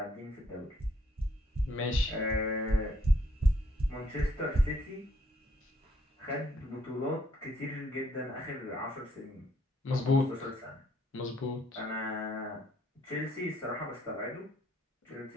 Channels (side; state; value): both; normal; correlation 0.68